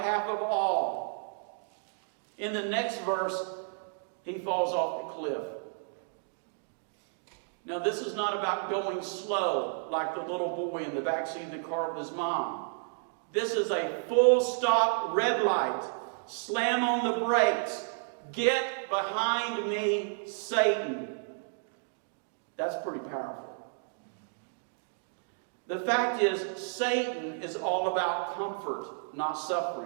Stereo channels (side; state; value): left; silent; digital silence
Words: of all. In the next verse, he falls off the cliff. Now, this is not about going slow like the little boy in the backseat of the car with his mom. This is a full stop red light. Slam on the brakes. Get behind me, Satan. That's pretty powerful. The fact is, Satan is all about comfort, not